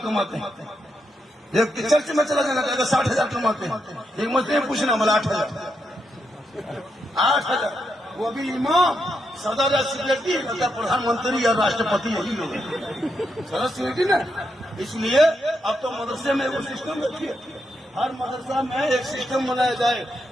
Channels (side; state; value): both; normal; correlation 0.82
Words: کماتے ہیں. ایک چرچ میں چلا جانا کہے گا 60,000 کماتے ہیں. ایک مسجد میں پوچھنا ملا 8,000. وہ بھی امام صدر یا سیکریٹری پردھان منتری یا راشٹرپتی یہی لوگ ہیں. صدر سیکریٹری نا. اس لیے اب تو مدرسے میں وہ سسٹم رکھیے. ہر مدرسہ میں ایک سسٹم بنایا جائے.